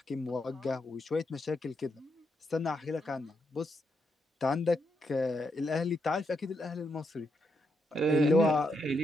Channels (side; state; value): both; normal; correlation 0.81